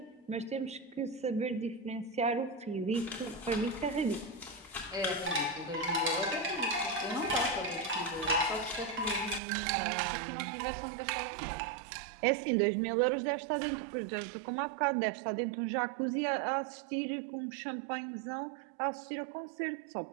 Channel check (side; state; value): left; drops out; at 9.4 s